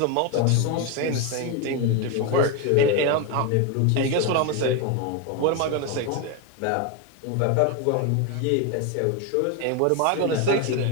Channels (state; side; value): different; both; correlation 0.02